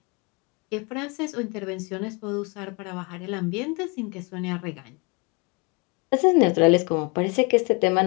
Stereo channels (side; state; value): right; quieter; 29.5 dB